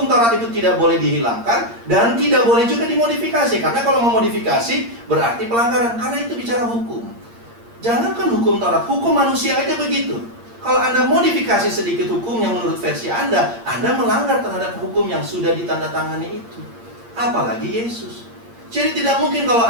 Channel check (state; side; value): late; left; 8.7 ms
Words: Taurat itu tidak boleh dihilangkan dan tidak boleh juga dimodifikasi. Karena kalau memodifikasi berarti pelanggaran, karena itu bicara hukum. Jangankan hukum Taurat, hukum manusia aja begitu. Kalau Anda modifikasi sedikit hukum yang menurut versi Anda melanggar terhadap hukum yang sudah ditandatangani itu. Apalagi Yesus. Jadi tidak mungkin kalau